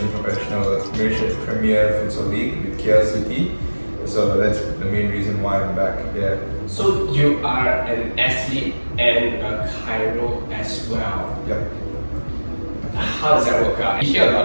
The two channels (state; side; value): inverted; both; correlation -1.00